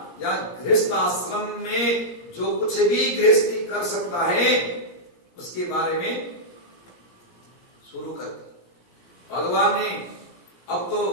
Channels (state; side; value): late; right; 17 ms